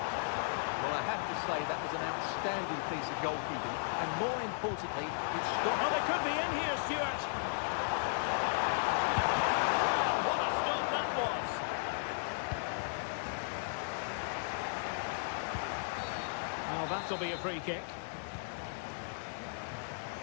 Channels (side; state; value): right; silent; 54 dB below the other